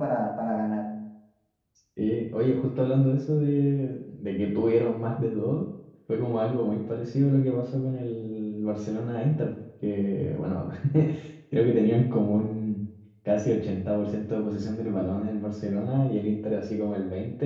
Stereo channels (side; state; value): both; identical; correlation 1.00